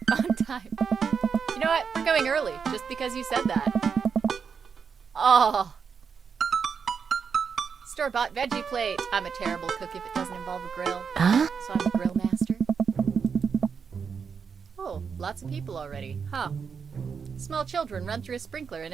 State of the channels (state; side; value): quieter; left; 6.2 dB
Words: on time? You know what? We're going early, just because you said that. Oh. Store-bought veggie plate. I'm a terrible cook if it doesn't involve a grill. So I'm a grill master. Oh, lots of people already. Huh. Small children run through a sprinkler and